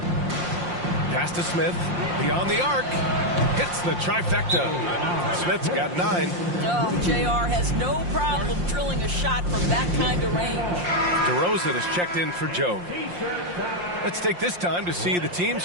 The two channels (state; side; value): late; left; 5.7 ms